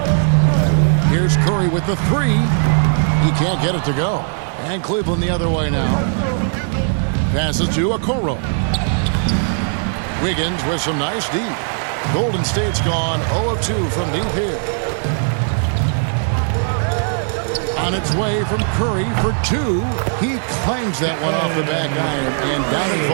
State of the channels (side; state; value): left; silent; 67 dB below the other